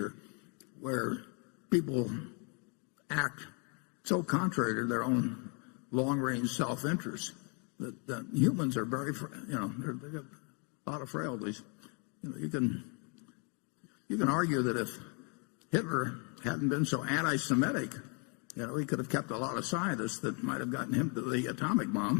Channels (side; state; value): right; quieter; 36.4 dB